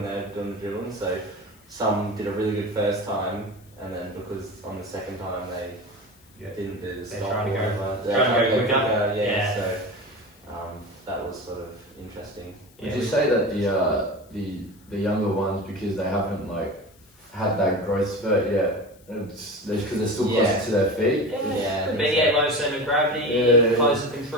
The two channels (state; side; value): noise; left; hiss, 29 dB below the sound